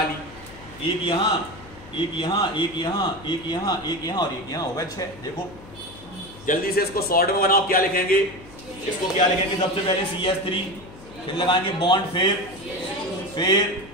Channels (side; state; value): left; noise; hum, 19 dB below the sound